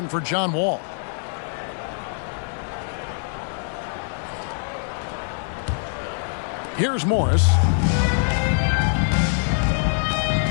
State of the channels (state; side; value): silent; right; 63 dB below the other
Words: for John Wall. Here's Morris.